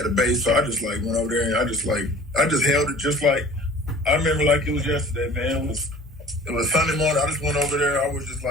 So I just like went over there and I just held it just like I remember like it was yesterday, man. It was Sunday morning. I just went over there. I was just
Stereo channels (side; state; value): both; normal; correlation 0.47